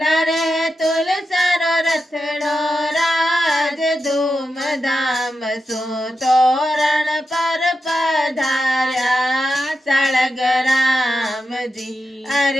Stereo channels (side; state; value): both; normal; correlation 0.89